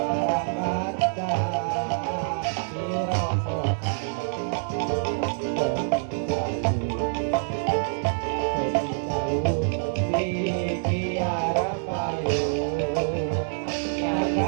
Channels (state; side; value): silent; left; digital silence